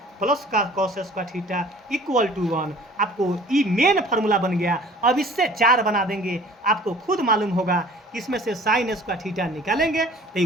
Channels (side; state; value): both; normal; correlation 0.49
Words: प्लस का cos square theta equal to 1। आपको ये मेन फार्मूला बन गया। अब इससे 4 बना देंगे, आपको खुद मालूम होगा इसमें से साइन स्क्वायर थीटा निकालेंगे तो